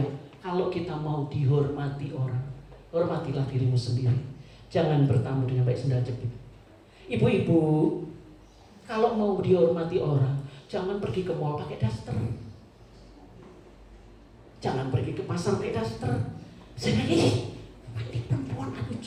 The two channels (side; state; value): both; identical; correlation 1.00